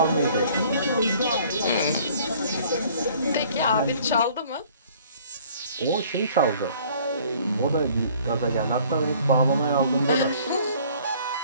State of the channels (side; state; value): both; inverted; correlation -0.55